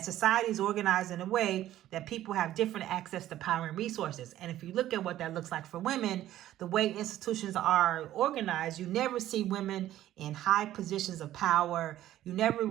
society is organized in a way that people have different access to power and resources. And if you look at what that looks like for women, the way institutions are organized, you never see women in high positions of power. You never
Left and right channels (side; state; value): left; quieter; 13.4 dB